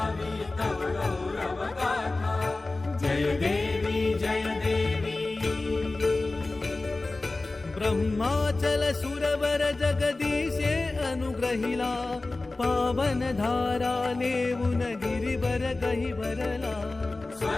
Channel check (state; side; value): quieter; right; 3.2 dB